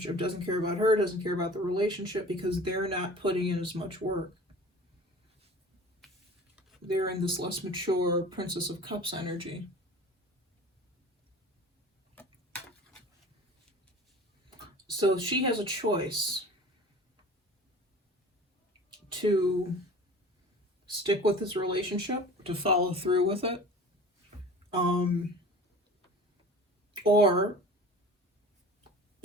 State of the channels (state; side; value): normal; both; correlation 0.41